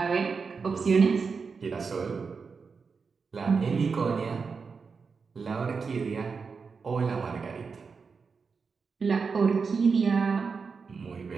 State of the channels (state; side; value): quieter; left; 5.2 dB